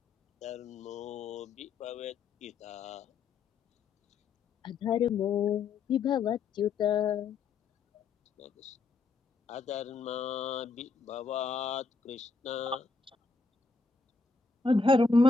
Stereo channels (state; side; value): quieter; right; 4.6 dB